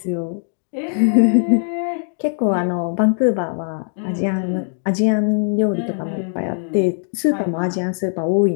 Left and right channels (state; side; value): silent; right; digital silence